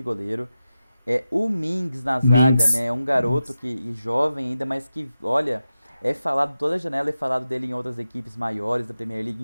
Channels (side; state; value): both; inverted; correlation -0.91